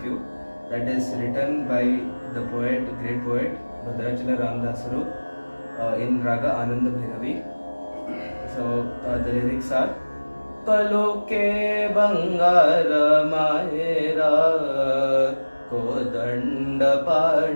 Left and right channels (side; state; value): both; inverted; correlation -1.00